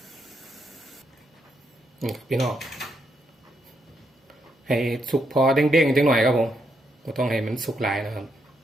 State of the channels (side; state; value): both; normal; correlation 0.79